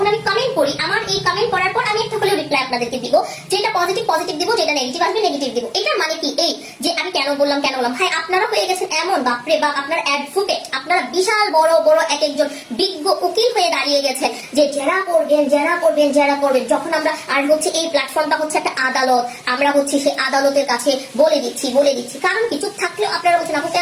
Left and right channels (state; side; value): identical; both; correlation 1.00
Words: আমি কমেন্ট করি, আমার এই কমেন্ট করার পর আমি একটা হলেও রিপ্লাই আপনাদেরকে দিব, যেটা পজিটিভ দিব, যেটা নেগেটিভ আসবে নেগেটিভ দিব। এটা মানে কি এই যে আমি কেন বললাম ভাই আপনারা হয়ে গেছেন এমন, বাপরে বাপ, আপনারা অ্যাডভোকেট, আপনারা বিশাল বড় বড় এক একজন বিজ্ঞ উকিল হয়ে দাঁড়িয়ে গেছেন যে যারা করবেন। যখন আমরা আর হচ্ছে এই প্ল্যাটফর্মটা হচ্ছে একটা আদালত, আমরা হচ্ছে সেই আদালতের কাছে বলে দিচ্ছি, কারণ কি চুপ থাকলেও আপনারা বলছেন আপু